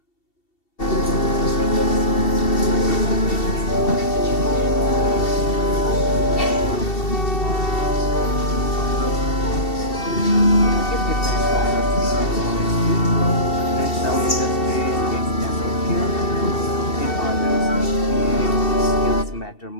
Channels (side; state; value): right; late; 2.7 ms